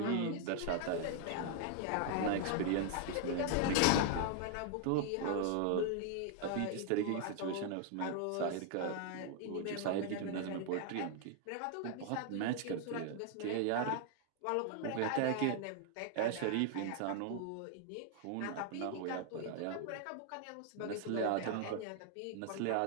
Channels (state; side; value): different; both; correlation 0.00